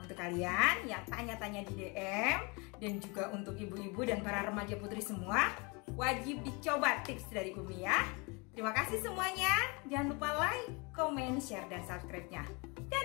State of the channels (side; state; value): right; quieter; 29.4 dB